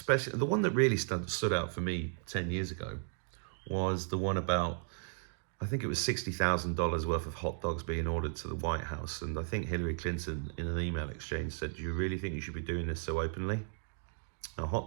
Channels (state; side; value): silent; left; 54 dB below the other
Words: the one that really stood out for me 10 years ago was the one about, I think it was $60,000 worth of hot dogs being ordered to the White House. And I think Hillary Clinton, in an email exchange, said, "Do you really think you should be doing this so openly?" Now,